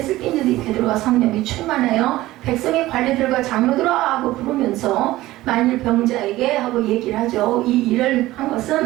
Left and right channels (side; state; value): left; quieter; 16.9 dB